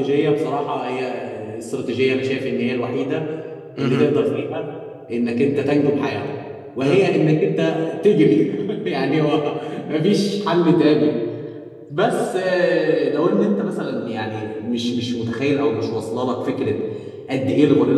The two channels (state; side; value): identical; both; correlation 1.00